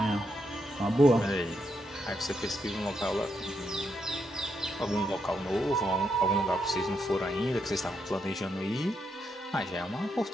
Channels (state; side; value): normal; both; correlation 0.80